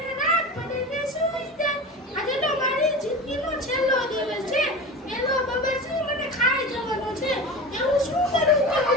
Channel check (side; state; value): both; normal; correlation 0.30